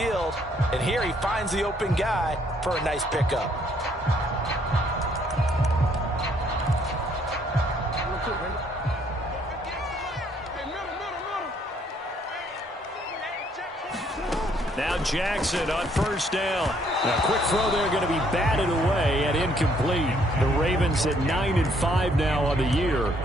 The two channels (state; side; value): normal; both; correlation 0.67